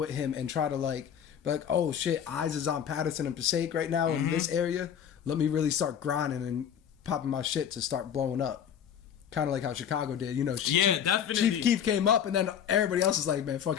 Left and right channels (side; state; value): right; quieter; 8.7 dB